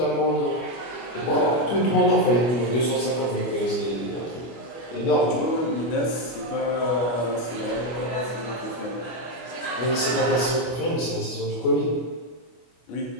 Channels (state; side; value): late; right; 25 ms